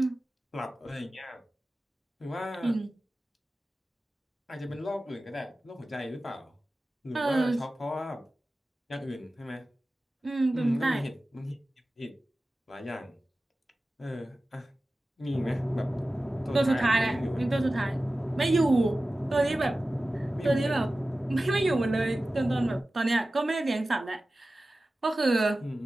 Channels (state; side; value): normal; both; correlation 0.95